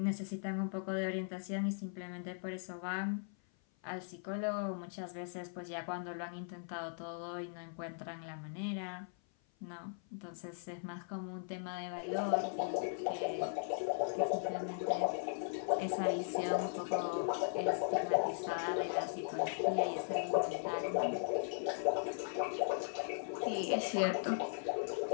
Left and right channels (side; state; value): right; silent; 52 dB below the other